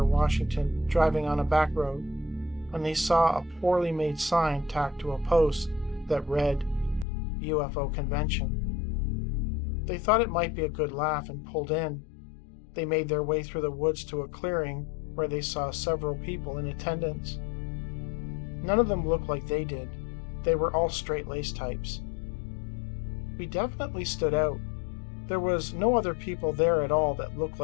Washington, driving on a back road, when they saw a poorly made sign tacked to a post that read, UFO Convention. They thought it might be a good laugh and pulled in. They made their way through the woods to a clearing where they saw several people in attendance. None of them looked like they did. They were all straight-laced types. We definitely stood out. There was no other people there at all that looked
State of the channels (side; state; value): right; drops out; at 7.1 s